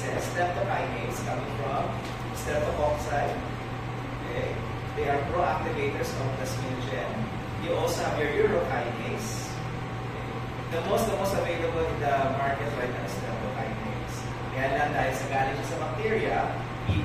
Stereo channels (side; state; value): both; identical; correlation 1.00